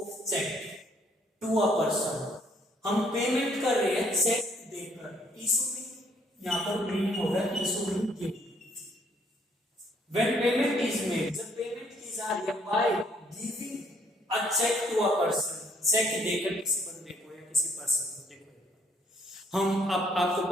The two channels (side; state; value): both; normal; correlation 0.66